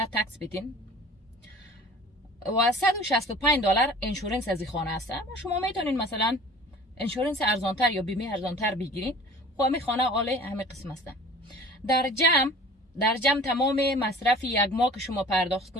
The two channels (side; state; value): both; normal; correlation 0.45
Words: تکس بدین و 165 دلار انشورنس از این خانه است. شما میتونین مثلا انشورنس ارزانتر یا بیمه ارزانتر بگیرین. خب همین خانه عالی همه قسم است. در جمع تمام مصرف یک ماه که شما پرداخت